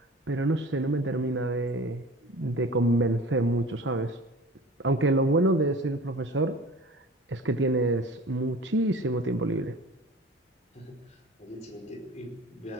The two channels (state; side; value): normal; both; correlation 0.40